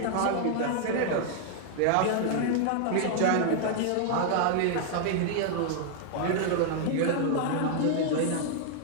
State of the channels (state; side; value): different; both; correlation 0.00